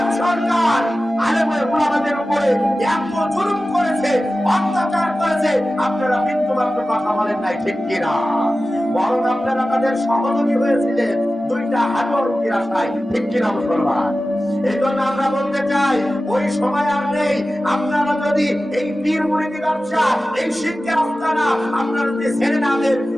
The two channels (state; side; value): normal; both; correlation 0.95